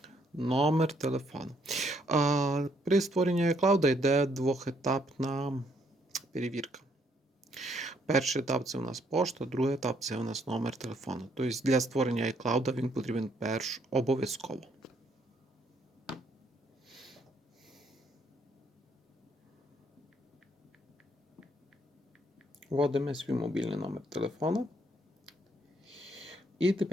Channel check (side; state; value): both; normal; correlation 0.70